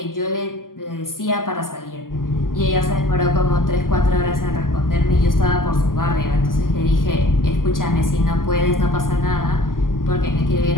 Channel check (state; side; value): late; right; 0.91 ms